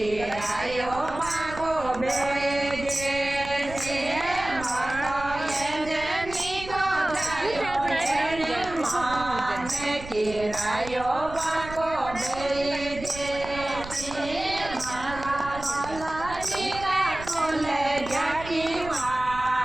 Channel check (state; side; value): noise; right; rumble, 13 dB below the sound